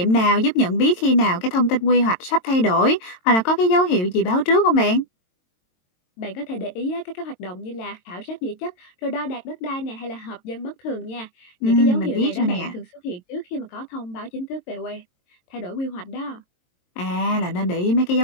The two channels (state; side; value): late; right; 22 ms